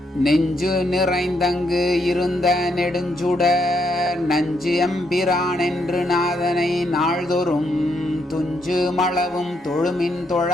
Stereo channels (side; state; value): both; normal; correlation 0.76